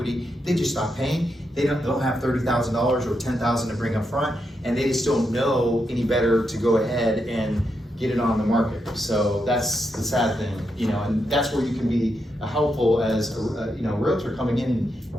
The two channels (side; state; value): both; normal; correlation 0.83